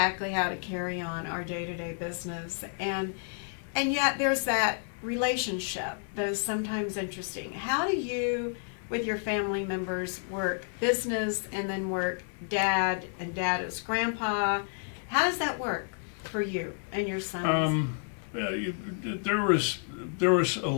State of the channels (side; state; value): right; silent; 58 dB below the other